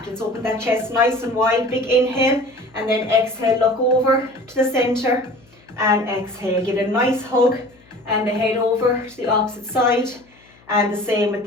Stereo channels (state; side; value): noise; left; hum, 29 dB below the sound